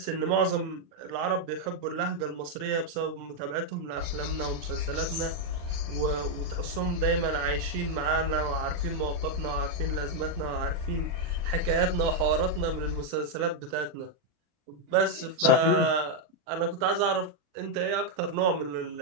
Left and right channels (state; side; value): late; left; 40 ms